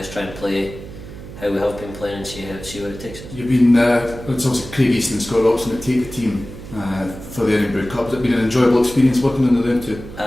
try and play how we have been playing, and see where it takes us. You've been, it's obviously Craig Easton and Scott Robson that take the team for the IRN BRU Cup. Has it been an enjoyable experience working under them two?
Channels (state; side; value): noise; right; hum, 14 dB below the sound